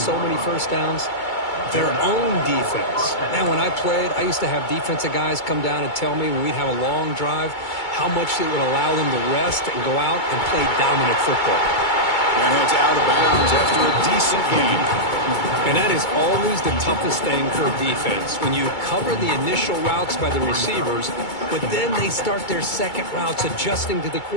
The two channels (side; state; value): right; late; 2.2 ms